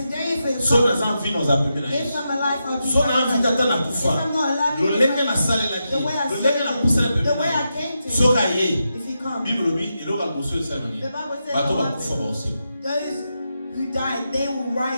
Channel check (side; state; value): both; inverted; correlation -0.86